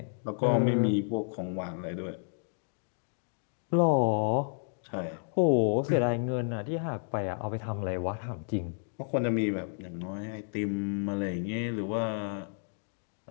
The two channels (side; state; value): right; silent; 57 dB below the other